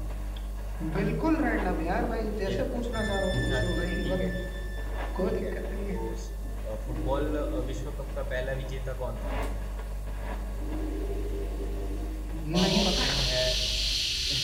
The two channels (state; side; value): identical; both; correlation 1.00